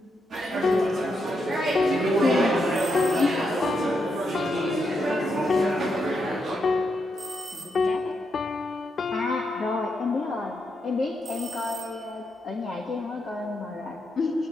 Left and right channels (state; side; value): normal; both; correlation 0.82